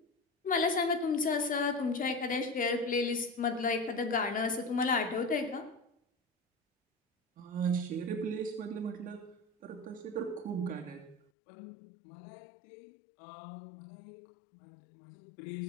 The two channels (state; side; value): drops out; right; at 11.2 s